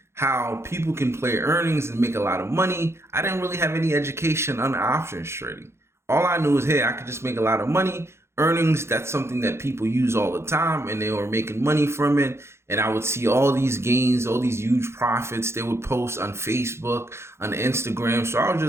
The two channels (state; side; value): late; left; 0.13 ms